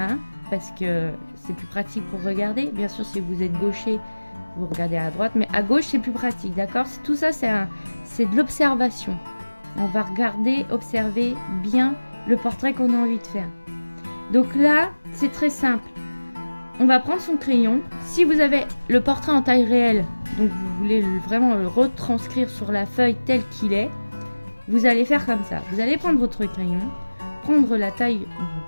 parce que c'est plus pratique pour regarder. Bien sûr, si vous êtes gaucher, vous regardez à droite, mais à gauche, c'est plus pratique, d'accord? Tout ça, c'est de l'observation. On va regarder, observer bien le portrait qu'on a envie de faire. Donc là, c'est très simple. On va prendre son crayon. Si vous avez le portrait en taille réelle, donc vous voulez vraiment le retranscrire sur la feuille tel qu'il est, vous allez faire comme ça. Vous allez prendre votre crayon, prendre la taille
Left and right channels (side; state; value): both; inverted; correlation -1.00